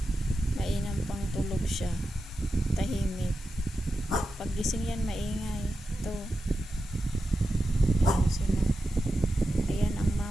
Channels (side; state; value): both; normal; correlation 0.91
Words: Mainam pang tulog siya. Tahimik. Paggising yan, maingay. Ito. Ayan sila. Ayan ang